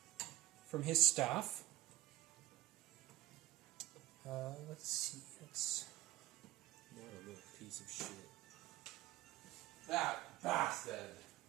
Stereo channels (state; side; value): quieter; left; 15.0 dB